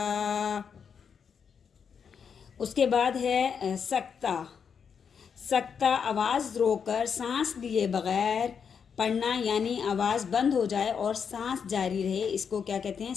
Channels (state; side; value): quieter; right; 6.8 dB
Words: اس کے بعد ہے سکتہ. سکتہ آواز روک کر سانس لیے بغیر پڑھنا، یعنی آواز بند ہو جائے اور سانس جاری رہے، اس کو کیا کہتے ہیں؟